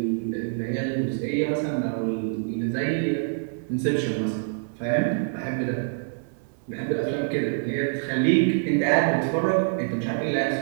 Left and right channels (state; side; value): silent; left; 61 dB below the other